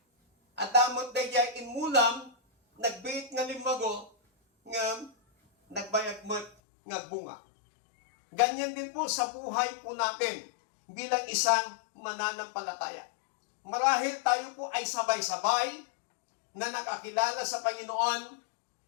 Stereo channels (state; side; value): drops out; right; at 6.5 s